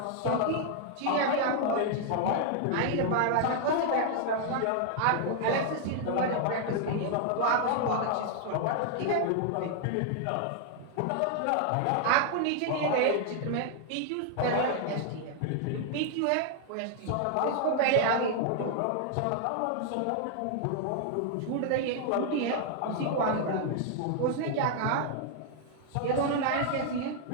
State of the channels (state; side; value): different; both; correlation 0.00